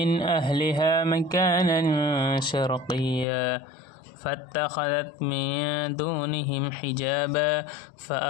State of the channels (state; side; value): drops out; right; at 3.2 s